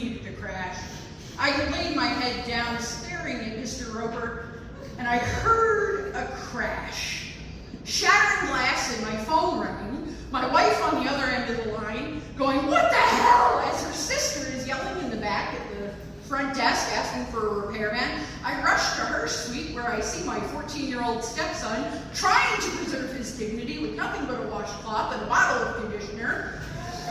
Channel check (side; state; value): both; identical; correlation 1.00